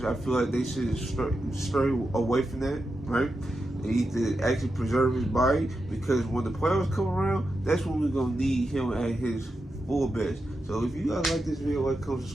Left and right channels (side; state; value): both; normal; correlation 0.88